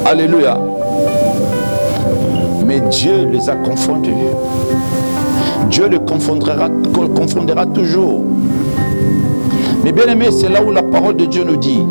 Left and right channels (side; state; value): both; inverted; correlation -1.00